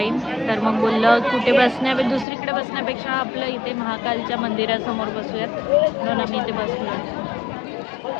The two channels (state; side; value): drops out; right; at 2.2 s